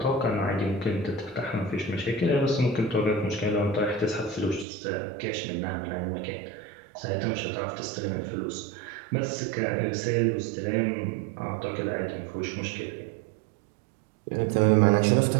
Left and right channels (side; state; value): left; drops out; at 4.7 s